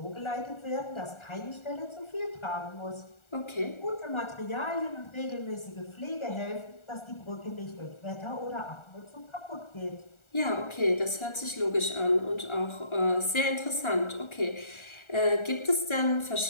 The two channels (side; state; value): right; late; 1.4 ms